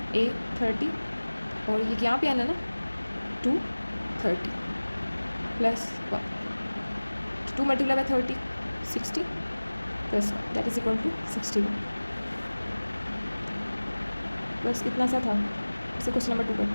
A30 और ये यहाँ पे n है ना 230 + 1, 2 × 30 60 + 1 दैट इज इक्वल टू 61। बस इतना सा था। इसे क्वेश्चन नंबर 2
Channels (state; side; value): inverted; both; correlation -1.00